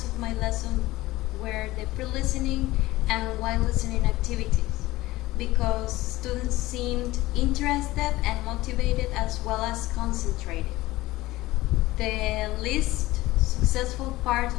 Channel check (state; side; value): quieter; right; 18.2 dB